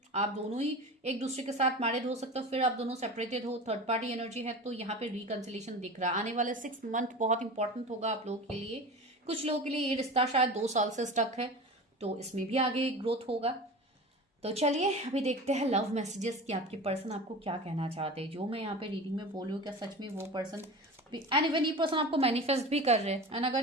आप दोनों ही एक दूसरे के साथ मैरिड हो सकते हो, फिर आप दोनों सेपरेटेड हो, थर्ड पार्टी एनर्जी है, तो यहाँ पे रिकंसिलेशन दिख रहा है। आने वाले 6 मंथ बहुत इंपॉर्टेंट होगा आप लोगों के लिए। कुछ लोगों के लिए ये रिश्ता शायद 2 साल से स्टक है, तो इसमें भी आगे ग्रोथ होगा। तो चलिए अभी देखते हैं लव मैसेजेस कि आपके पर्सन आपको क्या कहना चाहते हैं। जो मैं यहाँ पे रीडिंग में बोल रही हूँ, क्या सच में वो पर्सन, एंड इवन ये पर्सन आपको मैनिफेस्ट भी कर रहे हैं, एंड अगर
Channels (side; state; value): both; normal; correlation 0.33